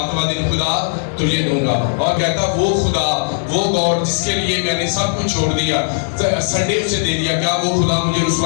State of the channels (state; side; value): silent; right; 59 dB below the other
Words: دن خدا تجھے دوں گا. اور کہتا وہ خدا, وہ گاڈ جس کے لیے میں نے سب کچھ چھوڑ دیا, سنڈے اسے دے دیا, کیا وہ خدا مجھے